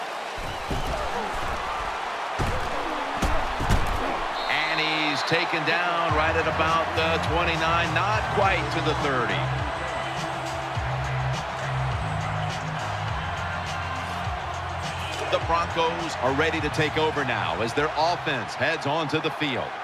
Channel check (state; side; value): identical; both; correlation 1.00